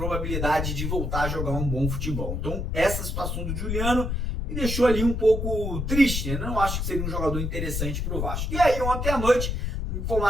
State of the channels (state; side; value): noise; left; rumble, 2 dB below the sound